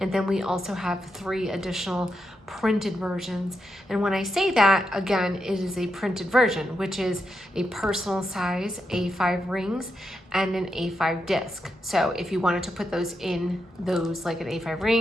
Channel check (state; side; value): normal; both; correlation 0.84